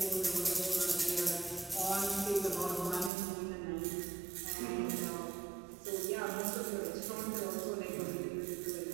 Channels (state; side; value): drops out; left; at 3.1 s